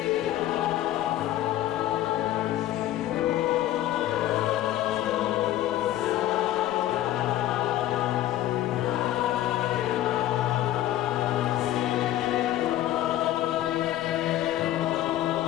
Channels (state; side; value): quieter; right; 13.6 dB